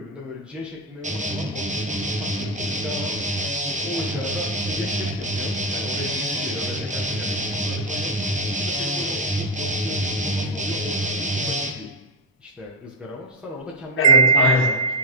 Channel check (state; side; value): normal; both; correlation 0.05